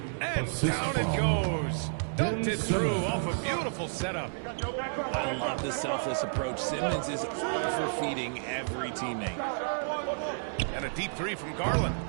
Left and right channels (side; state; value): left; silent; 57 dB below the other